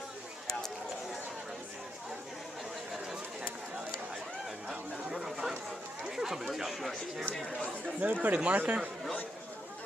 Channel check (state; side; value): normal; both; correlation 0.80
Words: Never put a marker?